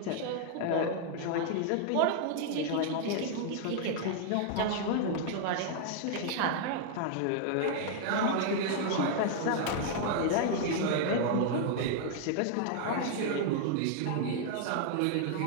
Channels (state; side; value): different; both; correlation 0.00